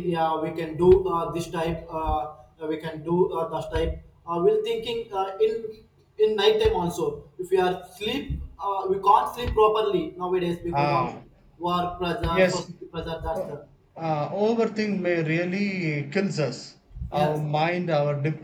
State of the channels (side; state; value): both; identical; correlation 1.00